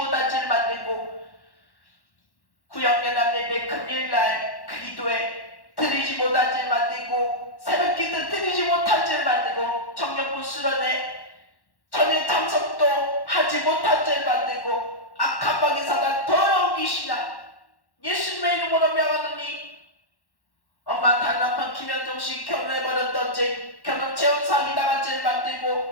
죄를 만들고 구역연합 예배 금일날 기도에 드리지 못한 죄를 만들고 새벽기도 드리지 못한 죄를 만들고 청년부 수련회 전에 참석도 하지 못한 죄를 만들고 악한 방의 사단 더러운 귀신아 예수님의 이름으로 명하노니 엄마 다른 남편 김현종씨 결혼해버렸던 죄 결혼 재혼 사기 당한 죄를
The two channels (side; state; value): right; late; 1.1 ms